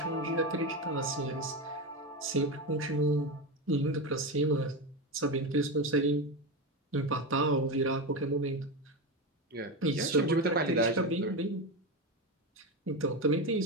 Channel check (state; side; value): normal; both; correlation 0.16